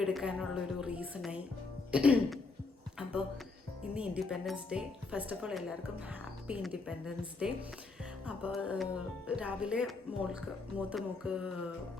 എടുക്കാനുള്ളൊരു റീസണായി. അപ്പോൾ ഇന്ന് independence day. First of all എല്ലാവർക്കും ഹാപ്പി ഇൻഡിപെൻഡൻസ് ഡേ. അപ്പോൾ രാവിലെ മൂത്ത മോൾക്ക്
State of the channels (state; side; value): quieter; right; 3.8 dB